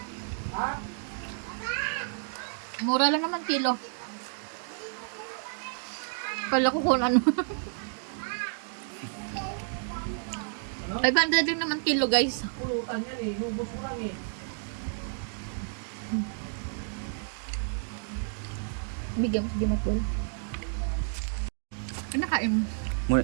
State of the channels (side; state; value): left; silent; digital silence